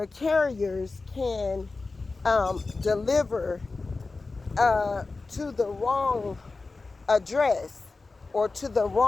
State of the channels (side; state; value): right; quieter; 3.8 dB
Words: carriers can deliver to the wrong address, or to the